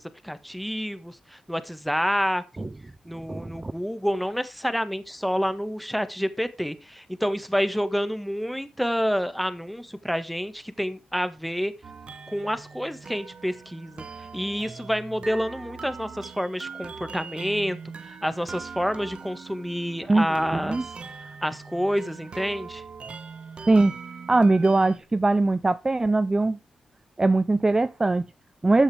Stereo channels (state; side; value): normal; both; correlation 0.98